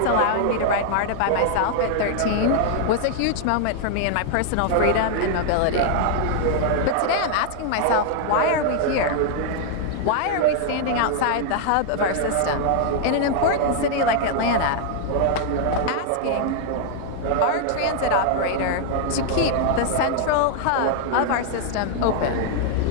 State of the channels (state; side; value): different; both; correlation 0.00